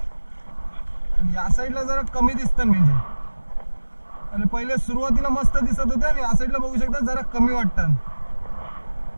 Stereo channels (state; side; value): inverted; both; correlation -1.00